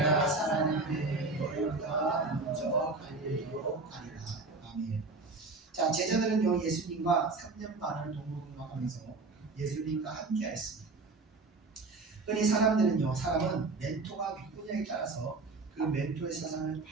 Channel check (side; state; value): left; quieter; 3.7 dB